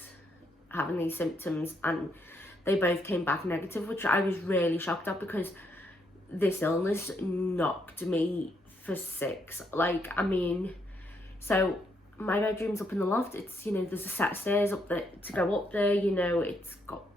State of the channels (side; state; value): both; normal; correlation 0.75